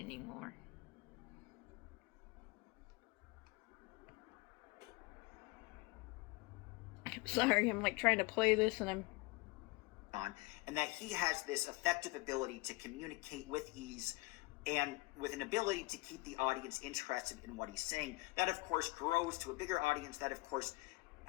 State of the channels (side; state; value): right; quieter; 23.2 dB